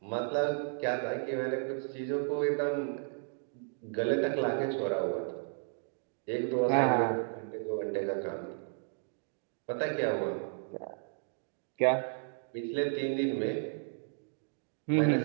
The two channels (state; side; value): silent; left; digital silence